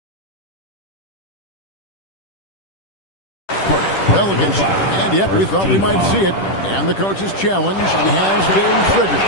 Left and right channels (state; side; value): late; right; 10 ms